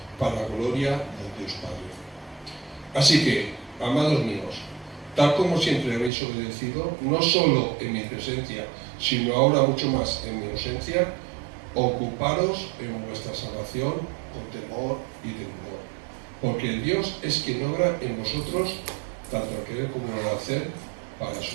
para la gloria de Dios Padre. Así que, amados míos, tal como siempre habéis obedecido, no solo en mi presencia, sino ahora mucho más en mi ausencia, ocuparos en vuestra salvación con temor y temor, porque el Dios es quien obra en vosotros tanto al querer como al hacer para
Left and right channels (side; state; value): left; drops out; at 6.1 s